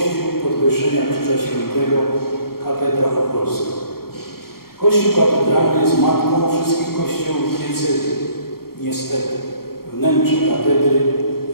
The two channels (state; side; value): late; right; 0.94 ms